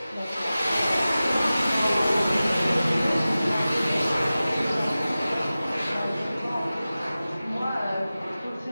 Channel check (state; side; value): inverted; both; correlation -0.96